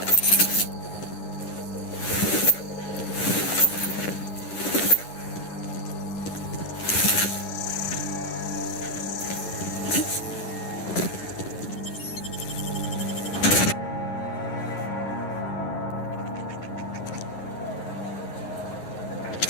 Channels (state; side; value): late; right; 10 ms